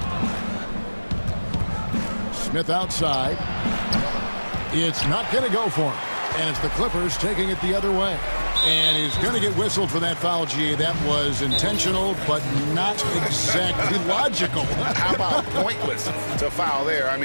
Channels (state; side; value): inverted; both; correlation -1.00